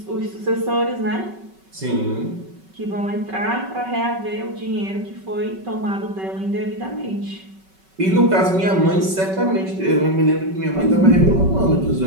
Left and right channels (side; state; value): left; late; 5.3 ms